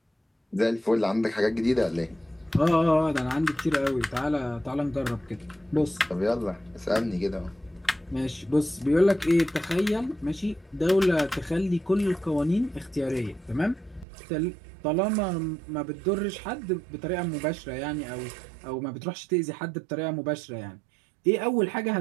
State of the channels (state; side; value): drops out; left; at 14.1 s